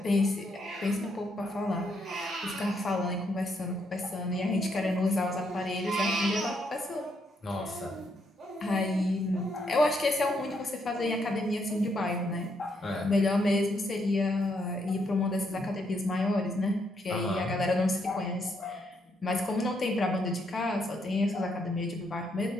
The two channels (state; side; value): normal; both; correlation 0.76